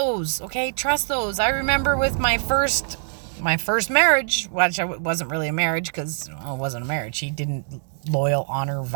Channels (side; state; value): left; silent; 62 dB below the other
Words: okay? Trust those. I remember with my first marriage, which wasn't really a marriage, because it wasn't a marriage. He didn't loyal, honor,